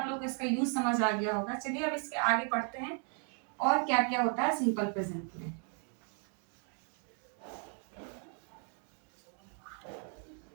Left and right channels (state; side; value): quieter; left; 38.5 dB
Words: लोग को इसका यूज समझ आ गया होगा। चलिए अब इसके आगे पढ़ते हैं और क्या क्या होता है सिंपल प्रेजेंट में।